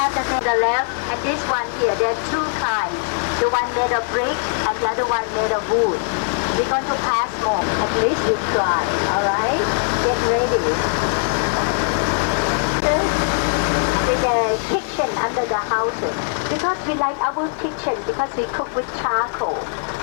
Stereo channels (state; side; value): silent; right; digital silence